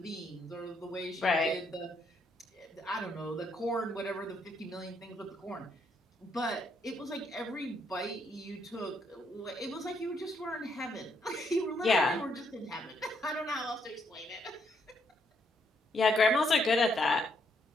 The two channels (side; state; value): both; normal; correlation 0.74